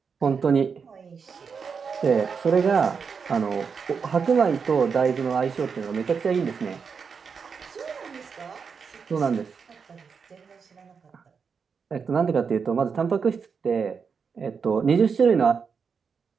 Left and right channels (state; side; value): quieter; left; 5.9 dB